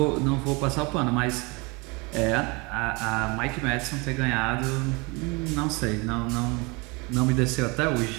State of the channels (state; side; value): quieter; left; 27.5 dB